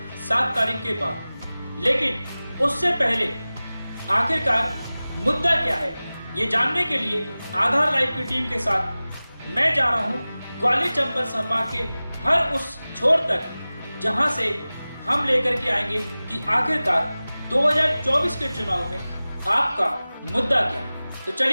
7 तारीख के बाद। लेकिन उससे पहले आखिरकार मुद्दा क्या है, ये जानने के लिए आधार लाइव की टीम के साथ मैं जा रहा हूँ ग्वालियर चंबल संभाग के हर उस छोर तक जहां से हम लेकर के आएंगे कि आखिरकार 2024 के चुनाव में आपका मुद्दा क्या है। तो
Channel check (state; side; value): inverted; both; correlation -0.98